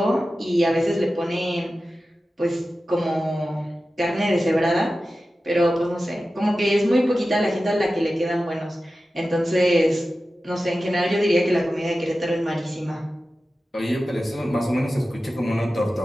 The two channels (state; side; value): normal; both; correlation 0.94